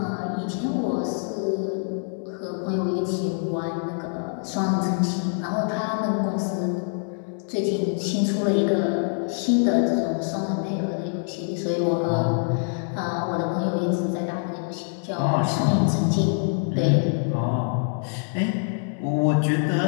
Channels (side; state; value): right; silent; 62 dB below the other